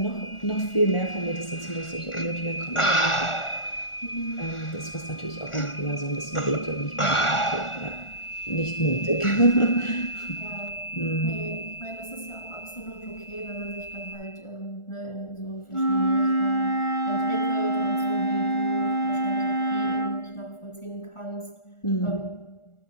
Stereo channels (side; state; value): right; late; 1.4 ms